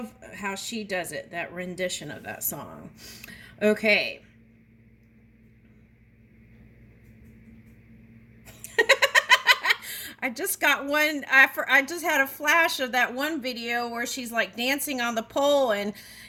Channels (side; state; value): both; identical; correlation 1.00